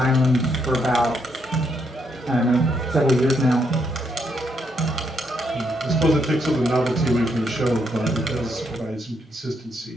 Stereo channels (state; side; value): normal; both; correlation 0.76